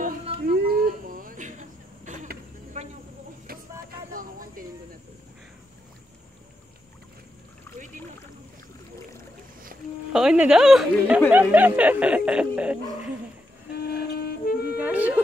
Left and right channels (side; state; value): both; normal; correlation 0.83